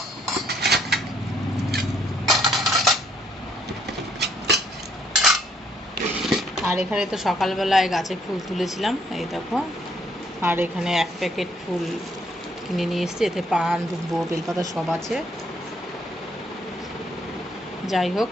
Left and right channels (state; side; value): normal; both; correlation 0.68